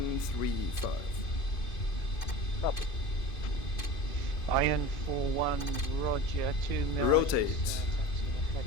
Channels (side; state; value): right; late; 2.5 ms